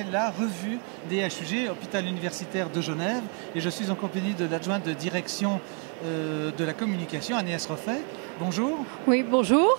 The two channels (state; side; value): quieter; left; 39.1 dB